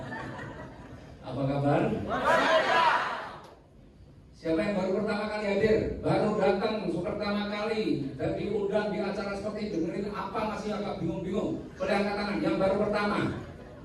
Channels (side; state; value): both; identical; correlation 1.00